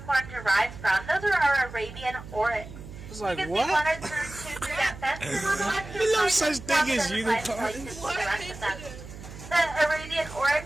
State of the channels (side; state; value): right; noise; hum, 14 dB below the sound